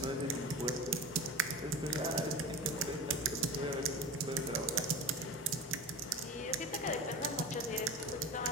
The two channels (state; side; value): normal; both; correlation 0.30